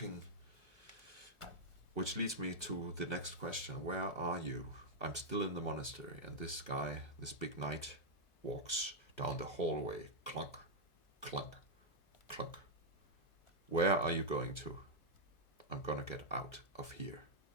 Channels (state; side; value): late; right; 1.4 ms